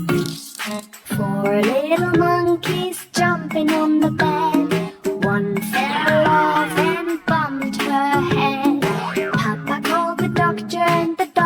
Four little monkeys jumping on the bed. One fell off and bumped her head. Papa called the doctor and the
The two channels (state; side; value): identical; both; correlation 1.00